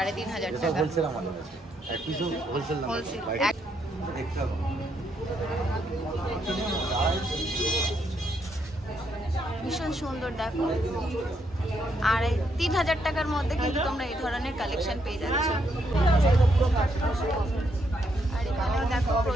এটা টাকা। হোলসেল আমাদের কাছে, এক পিসও হোলসেল না, হোলসেল দেখতে হবে। ভীষণ সুন্দর দেখো, আর 3000 টাকার মধ্যে কিন্তু তোমরা এই ধরনের কালেকশন পেয়ে যাচ্ছ। আর এখানেও দেখো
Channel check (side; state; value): both; normal; correlation 0.76